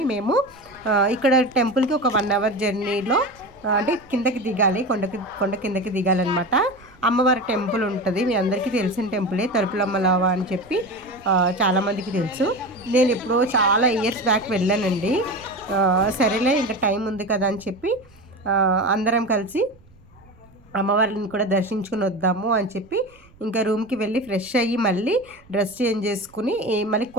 మేము ఇక్కడ టెంపుల్కి ఒక 1 అవర్ జర్నీలో అంటే కిందకి దిగాలి, కొండ కిందకి దిగాలన్నమాట. అమ్మవారి టెంపుల్ ఉంటుంది, మీ అందరికీ తెలిసిన టెంపులే, తలుపులమ్మలావా అని చెప్పి చాలామందికి తెలుసు. నేను ఎప్పుడో చాలా ఇయర్స్ బ్యాక్ వెళ్ళానండి. సరేలే ఇంకా టైం ఉంది కదా అని చెప్పి అందరం కలిసి అమ్మవారిని కూడా దర్శించుకుని వద్దాము అని చెప్పి ఇంకా రూమ్కి వెళ్ళి ఫ్రెష్ అయ్యి మళ్ళీ డ్రెస్ చేంజ్ చేసుకుని మళ్ళీ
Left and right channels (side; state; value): right; noise; rumble, 27 dB below the sound